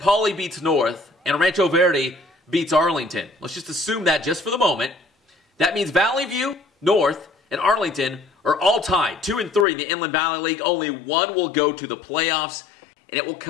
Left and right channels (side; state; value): right; drops out; at 9.7 s